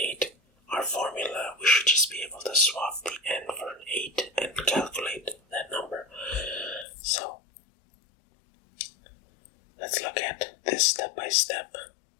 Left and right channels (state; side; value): drops out; right; at 6.9 s